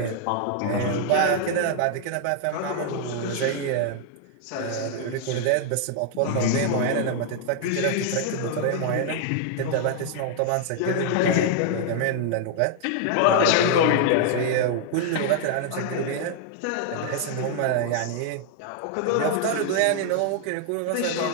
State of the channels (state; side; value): different; both; correlation 0.00